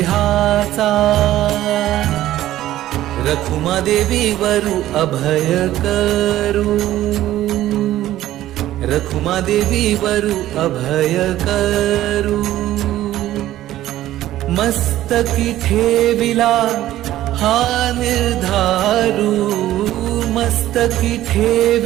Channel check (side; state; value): left; quieter; 14.0 dB